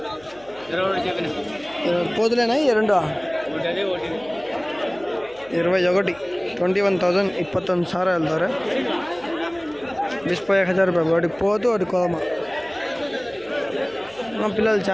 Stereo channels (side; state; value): left; noise; hum, 26 dB below the sound